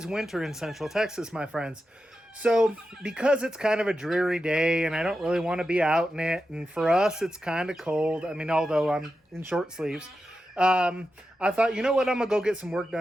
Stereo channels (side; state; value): both; normal; correlation 0.90